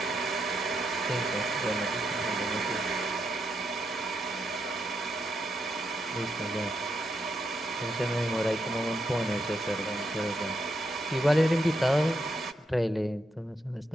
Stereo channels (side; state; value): both; normal; correlation 0.81